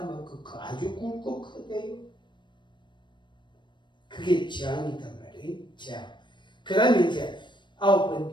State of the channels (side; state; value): right; late; 0.22 ms